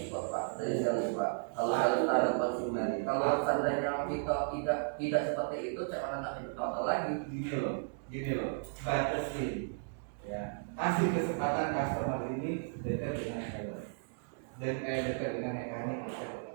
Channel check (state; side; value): silent; left; digital silence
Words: Pak, dari sales Pak. Kalau sales ada konsumen, kalau seandainya kita tidak seperti itu, cara nak contoh lagi. Gini loh, batasin, ya, kasih kesempatan customer ini dekat dengan sales dan dekat dengan mekanik, dekat